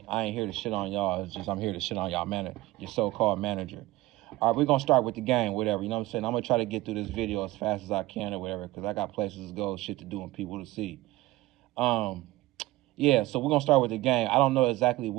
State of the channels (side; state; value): left; quieter; 18.3 dB